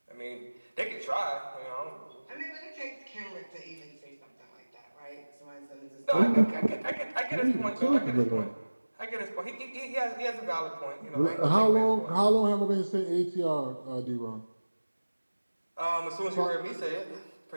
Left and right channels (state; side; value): inverted; both; correlation -1.00